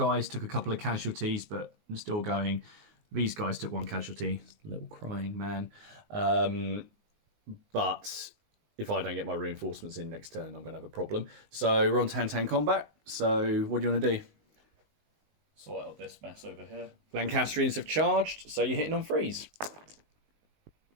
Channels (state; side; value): late; left; 19 ms